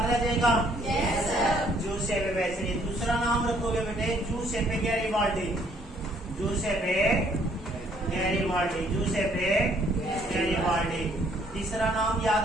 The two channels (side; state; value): both; normal; correlation 0.64